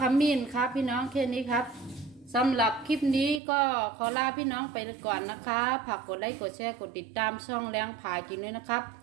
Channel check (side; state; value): left; drops out; at 3.4 s